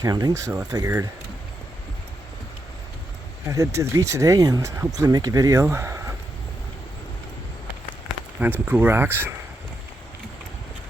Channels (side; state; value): both; normal; correlation 0.83